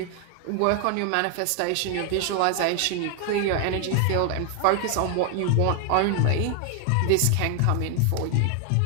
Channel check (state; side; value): different; both; correlation 0.00